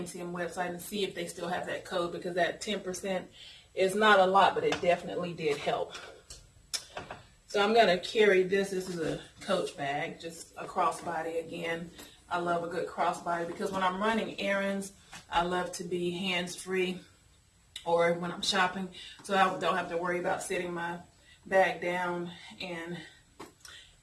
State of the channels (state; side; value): identical; both; correlation 1.00